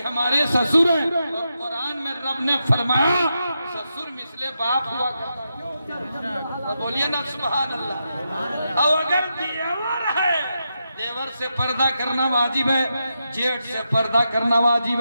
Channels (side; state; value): both; inverted; correlation -0.86